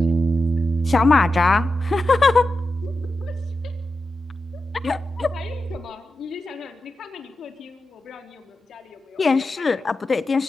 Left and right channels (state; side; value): normal; both; correlation 0.90